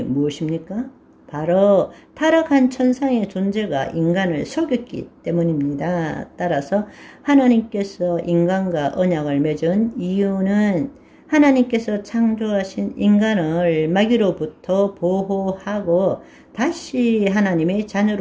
무엇입니까? 바로 타락한 천상의 존재가 인간을 속였기 때문입니다. 따라서 하나님께서 인간과 언약을 맺은 이유는 하나님께서 창조하신 인간을 마귀로부터 보호하고 다시 하나님의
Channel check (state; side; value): identical; both; correlation 1.00